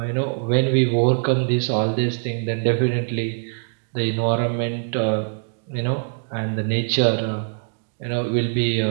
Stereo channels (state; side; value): silent; left; digital silence